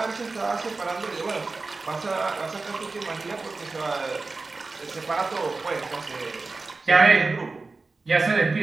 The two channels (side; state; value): left; quieter; 3.8 dB